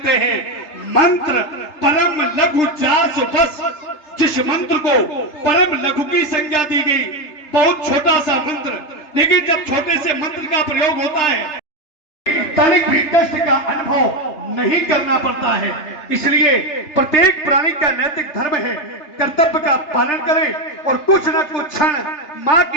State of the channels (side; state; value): right; late; 3.3 ms